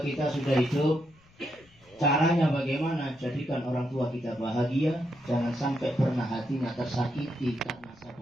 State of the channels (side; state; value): left; noise; rumble, 29 dB below the sound